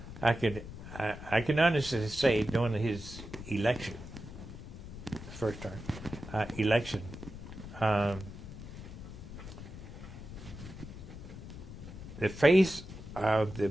I can honestly say during his election, first term election, the face of the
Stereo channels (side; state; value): left; noise; rumble, 13 dB below the sound